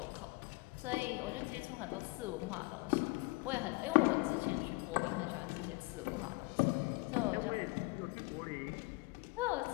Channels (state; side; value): quieter; right; 24.8 dB